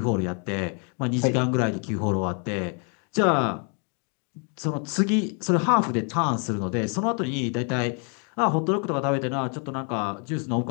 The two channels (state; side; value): quieter; right; 39.2 dB